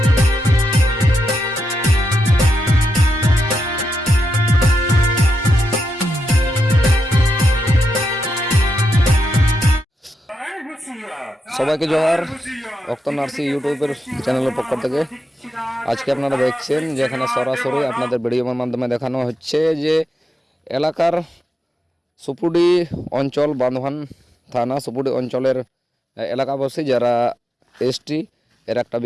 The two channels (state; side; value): normal; both; correlation 0.85